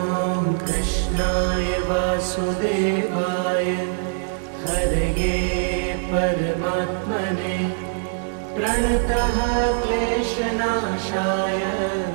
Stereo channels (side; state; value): left; silent; 64 dB below the other